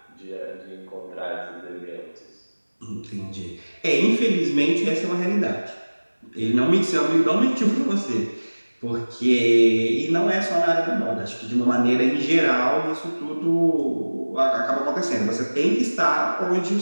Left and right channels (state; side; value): inverted; both; correlation -1.00